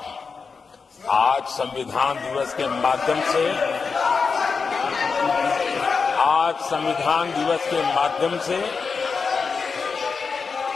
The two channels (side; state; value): right; quieter; 5.1 dB